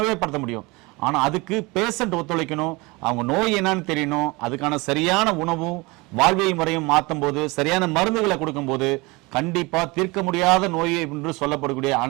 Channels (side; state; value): left; quieter; 24.8 dB